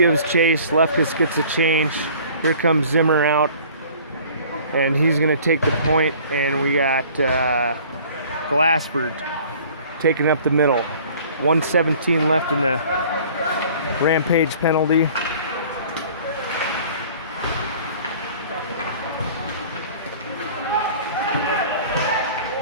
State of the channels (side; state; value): both; inverted; correlation -0.49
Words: chase. Lefkus gets a change. Here comes Zimmer out, and he's going to take the point, and we got Glassford taking up the middle. 1:17 left in the Rampage penalty.